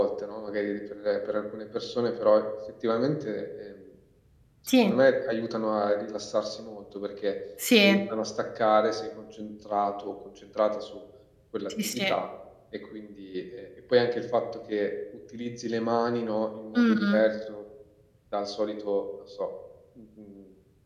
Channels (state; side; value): identical; both; correlation 1.00